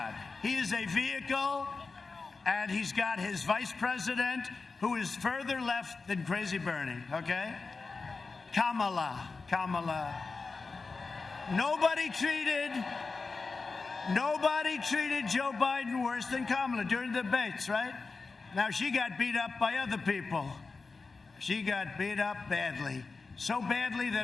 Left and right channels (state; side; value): quieter; right; 4.2 dB